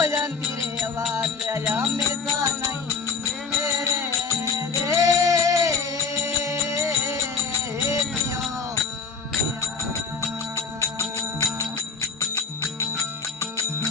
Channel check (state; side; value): quieter; right; 5.2 dB